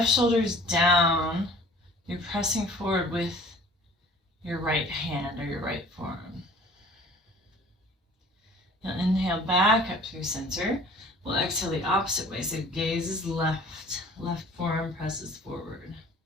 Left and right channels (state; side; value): normal; both; correlation 0.49